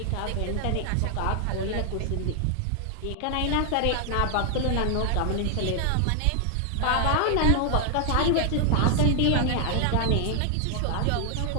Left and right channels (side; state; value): both; different; correlation 0.00